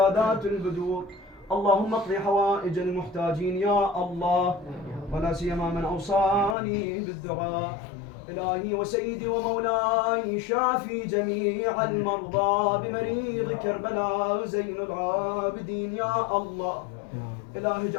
البدور اللهم اقضي حوائج المحتاجين يا الله ولا سيما من أوصاني بالدعاء إلهي وسيدي ومولاي شافي جميع المرضى بمريض كربلاء زين العابدين يا الله إلهي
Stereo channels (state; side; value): drops out; right; at 6.6 s